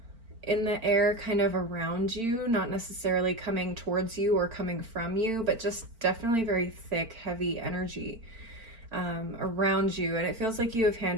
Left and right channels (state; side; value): late; left; 4.4 ms